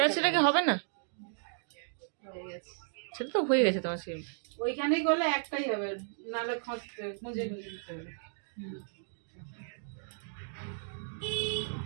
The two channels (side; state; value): left; silent; digital silence